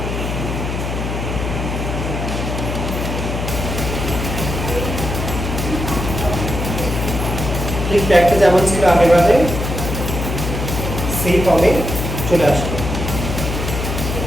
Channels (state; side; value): noise; left; hum, 3 dB below the sound